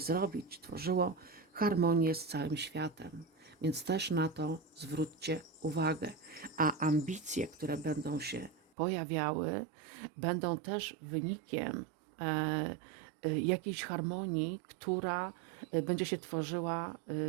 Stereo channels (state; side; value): drops out; left; at 8.7 s